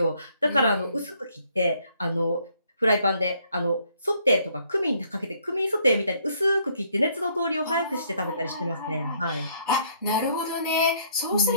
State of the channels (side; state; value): both; inverted; correlation -0.66